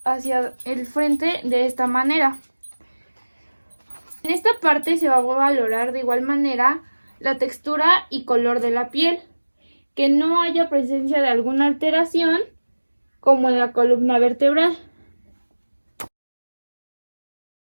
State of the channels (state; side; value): inverted; both; correlation -1.00